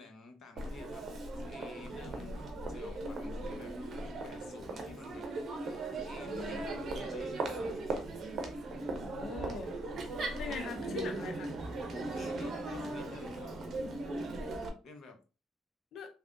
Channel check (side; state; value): both; normal; correlation 0.74